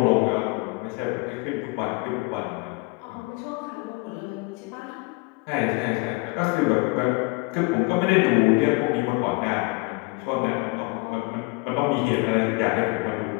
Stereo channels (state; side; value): quieter; right; 28.0 dB